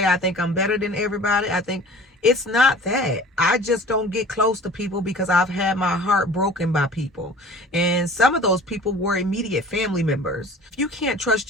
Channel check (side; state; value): both; normal; correlation 0.44